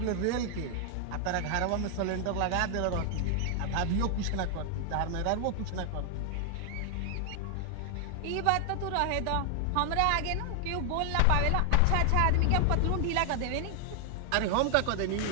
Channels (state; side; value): different; both; correlation 0.00